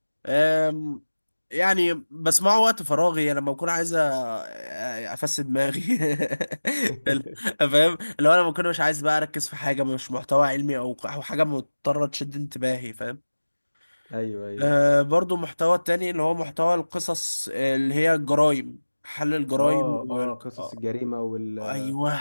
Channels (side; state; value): both; inverted; correlation -1.00